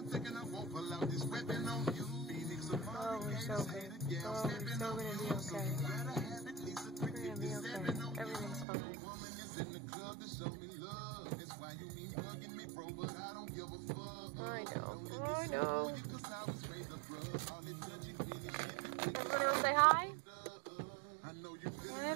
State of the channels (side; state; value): left; drops out; at 8.7 s